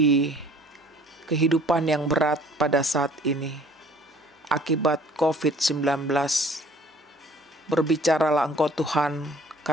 kehidupan yang berat pada saat ini, akibat COVID-19. Berbicaralah Engkau Tuhan,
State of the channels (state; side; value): normal; both; correlation 0.54